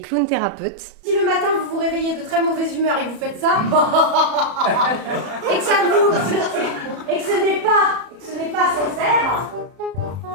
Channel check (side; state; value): left; late; 34 ms